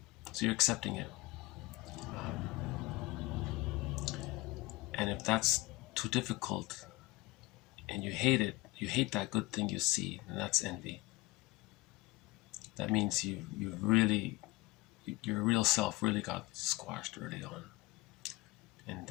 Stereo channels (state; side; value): quieter; right; 20.7 dB